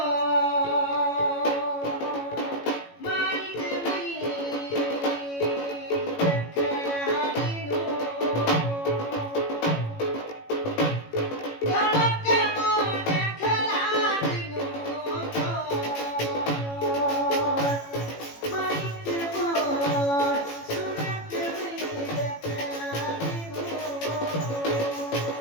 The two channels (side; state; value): right; late; 18 ms